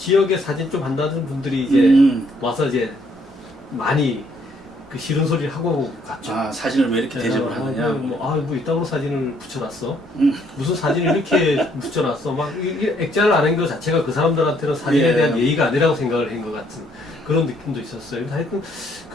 사진 좀 한다는 분들이 이제 와서 이제 많이 그 싫은 소리를 하고 갔죠. 아, 사진을 왜 이렇게 대접을 하느냐. 뭐 이따구로 사진을 붙여놨어. 무슨 사진을 이렇게 붙여놨어. 막 액자를 안 한 것 자체가 그 사람들한테는 사진에 예. 대한 예의가 아니라고 생각을 한 것 같은 그런 느낌도 있었어요. 근데 하여튼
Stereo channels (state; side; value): normal; both; correlation 0.67